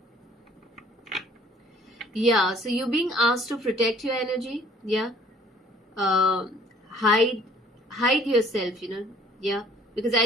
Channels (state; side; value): normal; both; correlation 0.57